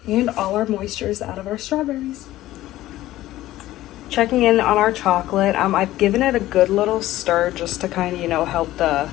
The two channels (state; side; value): quieter; right; 15.4 dB